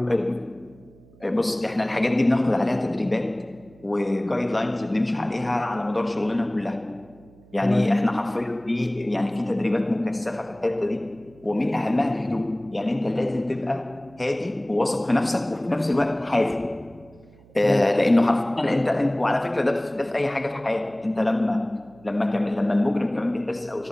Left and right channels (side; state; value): right; noise; hum, 25 dB below the sound